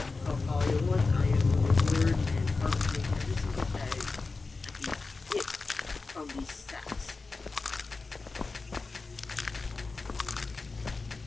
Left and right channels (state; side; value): quieter; right; 3.9 dB